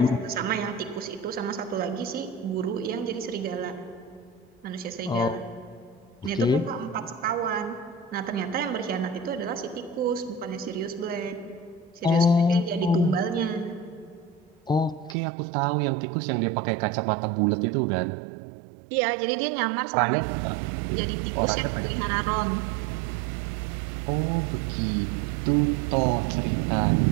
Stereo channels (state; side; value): drops out; left; at 15.2 s